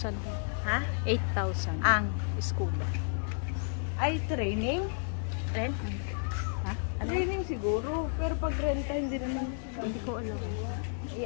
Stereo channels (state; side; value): silent; right; digital silence